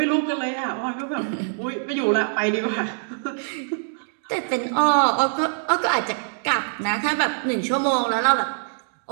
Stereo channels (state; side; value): silent; left; digital silence